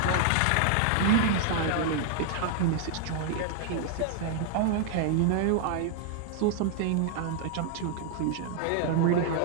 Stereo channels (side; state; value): both; different; correlation 0.00